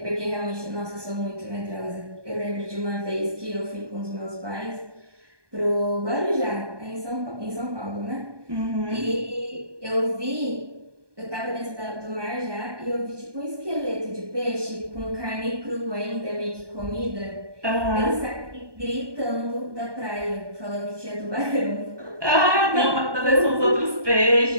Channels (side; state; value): left; late; 1.2 ms